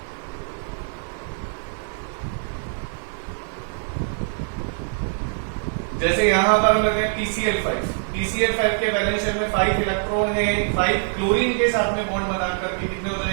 जैसे यहां पर हम लेते हैं PCl5 के वैलेंस शेल में 5 इलेक्ट्रॉन है, 5 क्लोरीन के साथ में बॉन्ड बनाकर के कितने हो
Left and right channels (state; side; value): silent; left; digital silence